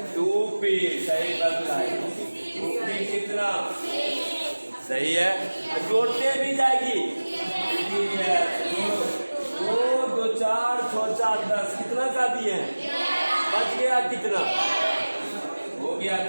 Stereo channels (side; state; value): both; inverted; correlation -1.00